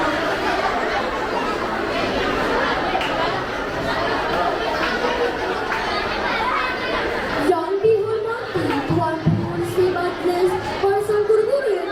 Yang dihormati Tuan Pengurusi Majlis, para guru-guru yang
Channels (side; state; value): both; identical; correlation 1.00